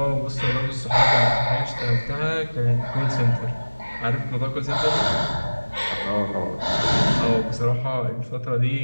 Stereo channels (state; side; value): inverted; both; correlation -1.00